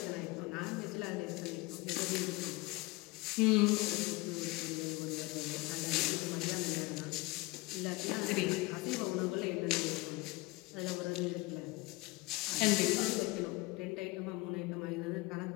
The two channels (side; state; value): right; quieter; 22.9 dB